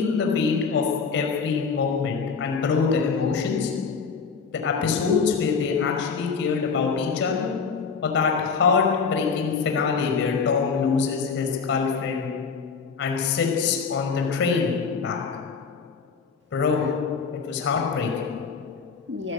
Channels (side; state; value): right; quieter; 5.4 dB